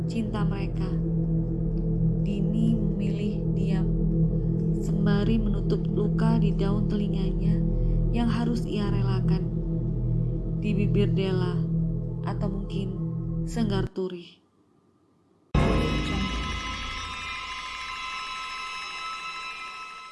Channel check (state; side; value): identical; both; correlation 1.00